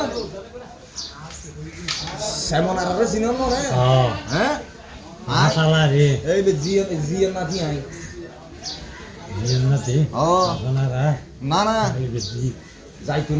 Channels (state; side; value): identical; both; correlation 1.00